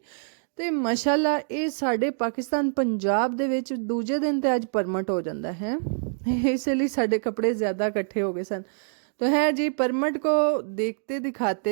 तो माशाल्लाह ये साढ़े पाकिस्तान पंजाब दे विच दूजे दिन तो अज परमट हो जाता है, इसलिए साढ़े कपड़े ज़्यादा इकट्ठे हो गए सन। तो है जी परमट को देखते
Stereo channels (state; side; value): silent; left; digital silence